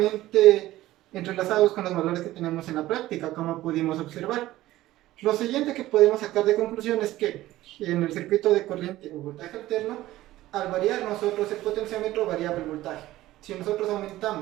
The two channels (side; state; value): left; quieter; 15.8 dB